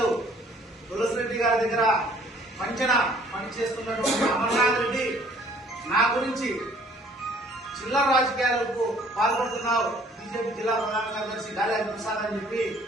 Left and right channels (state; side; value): normal; both; correlation 0.57